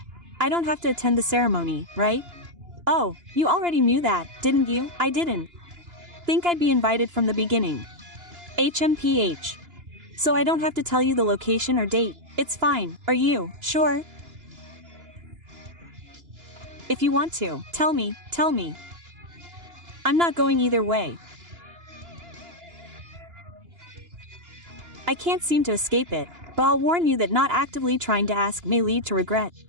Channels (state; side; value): late; left; 2.9 ms